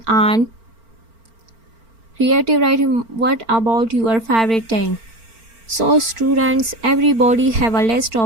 writing, what about your favorite thing? So students, everybody have a list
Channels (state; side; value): late; left; 4.4 ms